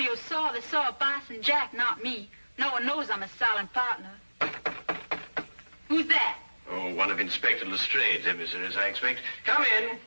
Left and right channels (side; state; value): both; inverted; correlation -1.00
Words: saw, they saw a Bison Jack, not me. No one knows I'm a silent partner. Who's that? Oh, one of Inspector Lestrade's emissaries, I expect. Come in.